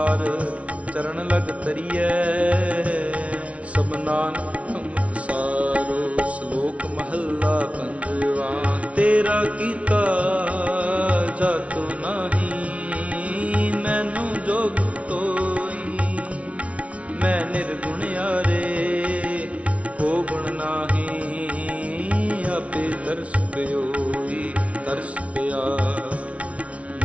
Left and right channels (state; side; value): late; left; 0.064 ms